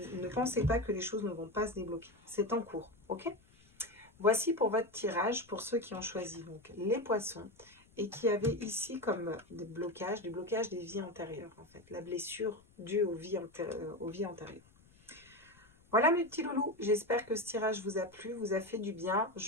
ne pensez pas que les choses ne vont pas se débloquer. C'est en cours. Ok ? Voici pour votre tirage, pour ceux qui ont choisi donc les poissons et qui avaient ici comme des blocages des vies antérieures en fait. La blessure due aux vies antérieures. Voilà mes petits loulous, j'espère que ce tirage vous a plu, vous a fait du bien.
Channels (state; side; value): noise; left; rumble, 28 dB below the sound